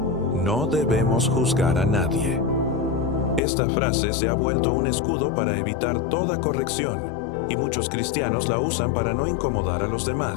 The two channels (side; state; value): right; drops out; at 3.4 s